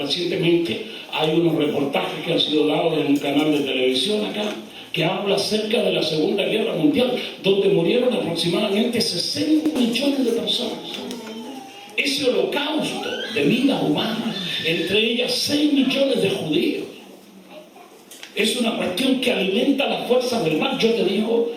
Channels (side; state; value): both; identical; correlation 1.00